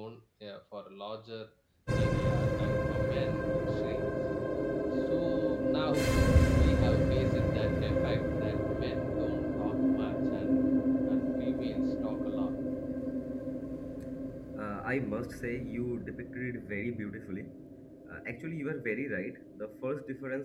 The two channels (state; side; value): identical; both; correlation 1.00